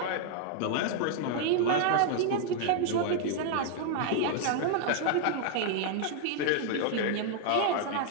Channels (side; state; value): both; different; correlation 0.00